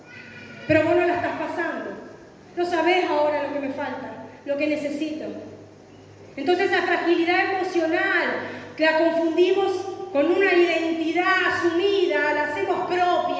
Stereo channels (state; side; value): identical; both; correlation 1.00